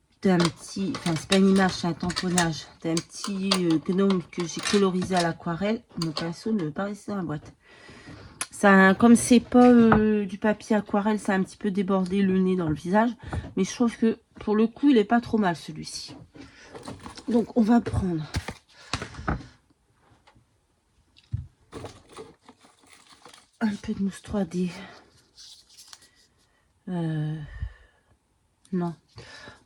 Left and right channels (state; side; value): identical; both; correlation 1.00